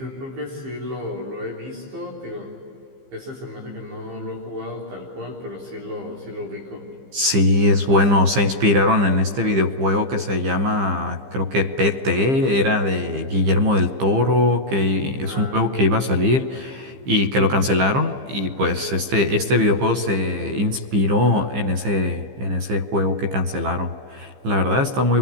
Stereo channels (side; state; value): left; late; 15 ms